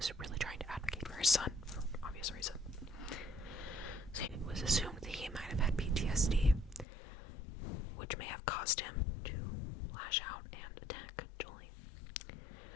really trying to advocate for his son for obvious reasons. So it was assumed that he might have had PTSD, which may have caused him to lash out and attack Julie.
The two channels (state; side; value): drops out; right; at 6.9 s